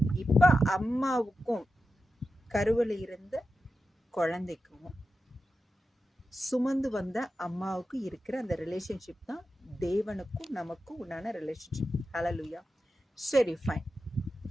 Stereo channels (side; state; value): both; normal; correlation 0.91